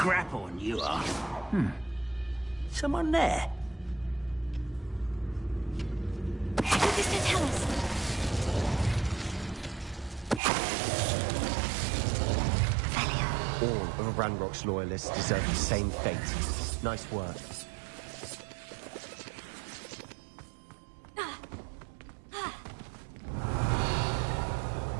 grapple, you are. Someone there? Mr. Tellus. All of Ranrock's loyalists deserve the same fate. Nice work.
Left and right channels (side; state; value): left; drops out; at 10.4 s